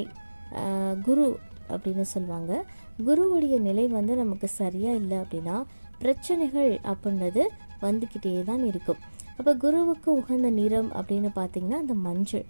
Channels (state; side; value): inverted; both; correlation -1.00